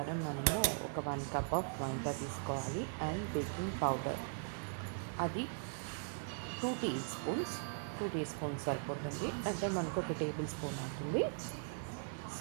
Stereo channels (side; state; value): left; silent; 51 dB below the other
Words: మనము ఒక 1 కప్ ఆఫ్ మైదా తీసుకోవాలి. అండ్ బేకింగ్ పౌడర్ అది 2 టీ స్పూన్స్ సరిపోతుంది, అంటే మనకు ఒక టేబుల్ స్పూన్ అవుతుంది.